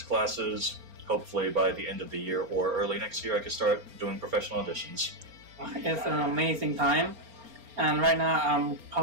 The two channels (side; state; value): left; late; 4.4 ms